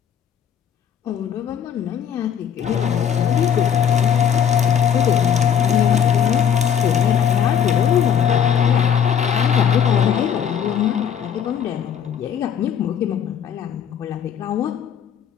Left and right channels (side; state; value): right; quieter; 8.3 dB